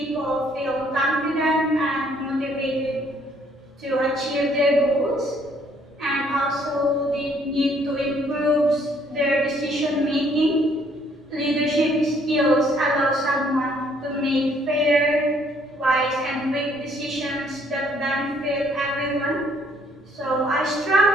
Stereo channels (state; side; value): normal; both; correlation 0.64